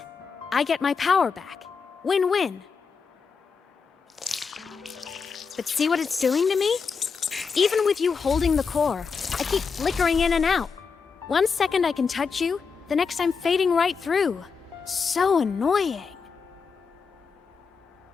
I get my power back. Win-win. But see what it's doing to me? Even with you holding the core, I keep flickering in and out. 1 second I can touch you, the next I'm fading right through. So annoying.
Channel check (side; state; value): right; quieter; 5.5 dB